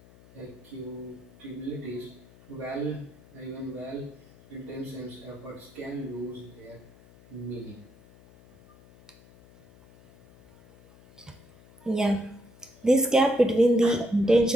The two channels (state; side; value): noise; left; hum, 25 dB below the sound